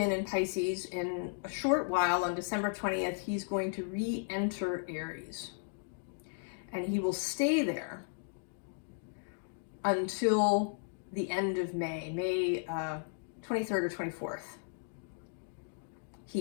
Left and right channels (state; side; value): silent; right; digital silence